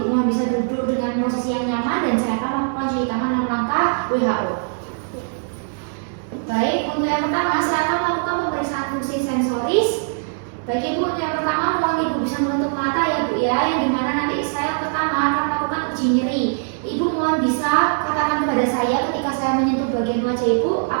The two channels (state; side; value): silent; left; digital silence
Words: mohon bisa duduk dengan posisi yang nyaman, dan saya akan melakukan cuci tangan 6 langkah WHO. Baik, untuk yang pertama saya akan melakukan pemeriksaan fungsi sensoris. Baik Ibu, untuk yang pertama mohon Ibu bisa menutup mata ya Bu ya, yang dimana nanti saya pertama akan melakukan uji nyeri. Ibu mohon bisa katakan kepada saya ketika saya menyentuh bagian wajah Ibu,